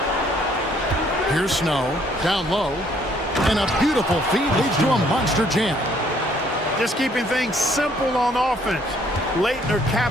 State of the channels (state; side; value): normal; both; correlation 0.64